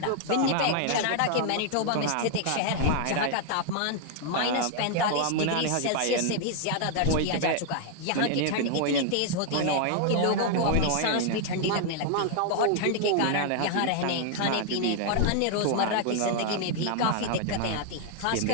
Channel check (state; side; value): different; both; correlation 0.00